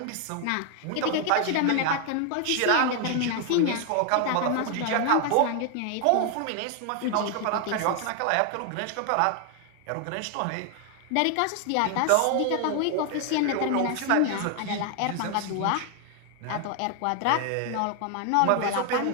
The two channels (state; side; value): different; both; correlation 0.00